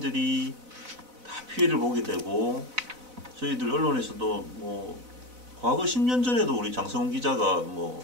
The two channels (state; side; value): late; left; 4.0 ms